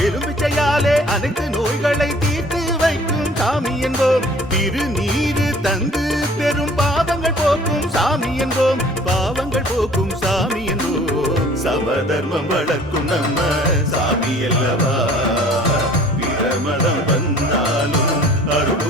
எலும்பிச்சையாலே அனைத்து நோய்களை தீர்த்து வைக்கும் சாமி என்போம். திருநீரு தந்து பெரும் பாவங்கள் போக்கும் சாமி என்போம், பாவங்கள் போக்கும் சாமி என்போம். சமதர்மம் வளர்க்கும் நம்ம சாமி அல்லவா, பிரமதம் வந்தாலும்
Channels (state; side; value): normal; both; correlation 0.51